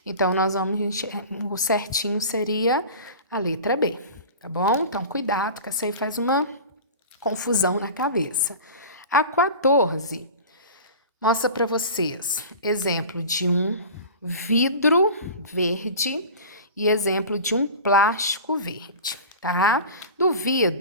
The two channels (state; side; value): inverted; both; correlation -0.35